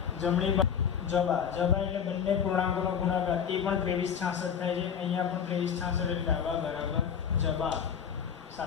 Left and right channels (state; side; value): quieter; right; 7.7 dB